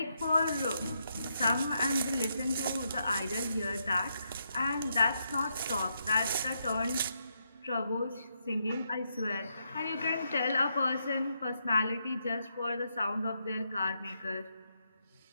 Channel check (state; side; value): inverted; both; correlation -0.80